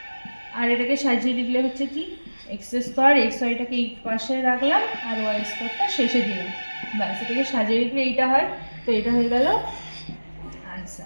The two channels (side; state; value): both; inverted; correlation -1.00